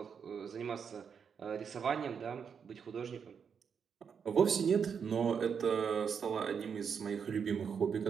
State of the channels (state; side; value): quieter; left; 6.8 dB